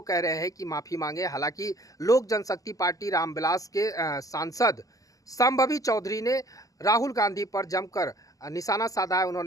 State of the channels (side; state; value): right; late; 0.17 ms